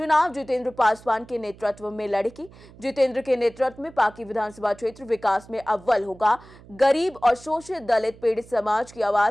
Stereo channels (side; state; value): right; noise; hum, 22 dB below the sound